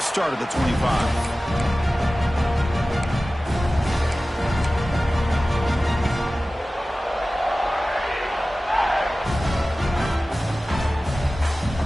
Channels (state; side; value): normal; both; correlation 0.96